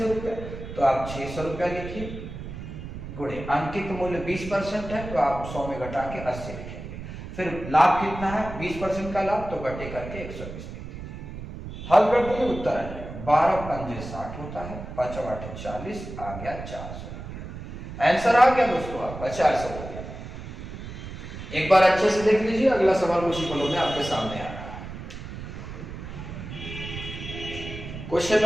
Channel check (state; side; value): noise; right; rumble, 10 dB below the sound